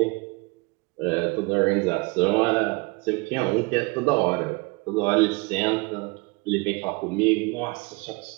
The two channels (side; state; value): left; quieter; 26.8 dB